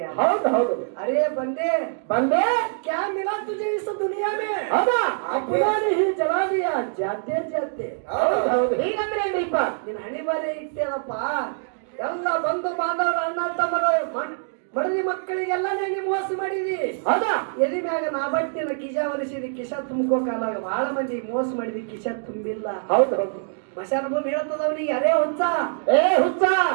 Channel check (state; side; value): silent; left; digital silence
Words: ಹೌದು ಹೌದು अरे बंदे ಬಂದೆ क्या मिला तुझे इस दुनिया में ಹೌದಾ अपना ही जला दिया जाते जाते ಹೌದು ಹೌದು ಹೀಗಂದ್ರೆ ಏನ್ರಿಪ್ಪ ನಿನ್ನ ಹಣಿ ಬಾರಿ ಇಟ್ಟೇನಪ್ಪ ಎಲ್ಲ ಬಂಧು ಬಾಂಧವರ ಅಣ್ಣ ತಮ್ಮರು ಮಡದಿ ಮಕ್ಕಳಿಗೆಲ್ಲ ನೀನು ಮೋಸ ಮಾಡಿದಿ ಹೌದಾ ಎದಿ ಮ್ಯಾಗ ನಾ ಬಟ್ಟಿನ ಕಿಶ ಒಲಿಸಿದಿ ಕಿಶ ತುಂಬ್ಕೋ ಕಾಲ ಬಹಳ ಮಂದಿ ಮೋಸ ಮಾಡಿದಿ ಕಿಶ ತುಂಬಿಲ್ಲ ಹೌದು ಹೌದು ಮಶಾನ ಭೂಮಿ ಹೇಳ್ತದ ಅವನಿಗೆ ಅರೇ ಹುಚ್ಚ ಏ ಹುಚ್ಚ